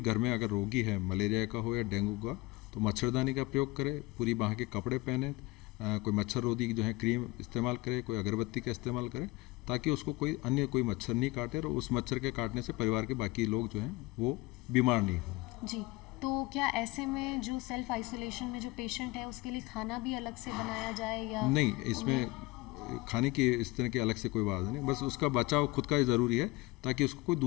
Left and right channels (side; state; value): right; quieter; 22.1 dB